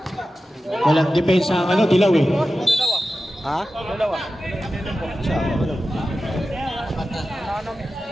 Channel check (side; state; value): both; normal; correlation 0.93